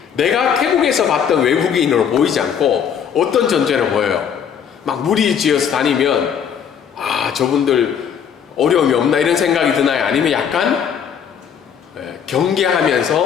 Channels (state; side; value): quieter; right; 7.9 dB